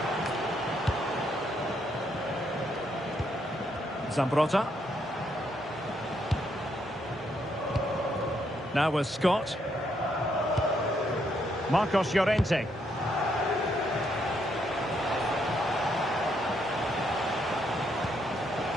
Zambrotta. Now with Scott. Marcos Llorente.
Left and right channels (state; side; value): normal; both; correlation 0.75